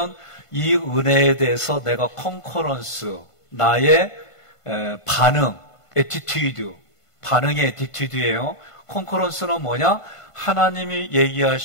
이 은혜에 대해서 내가 컨커런스, 나의 반응, 애티튜드, 반응의 애티튜드예요. 컨커런스는 뭐냐? 하나님이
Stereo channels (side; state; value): right; late; 1.5 ms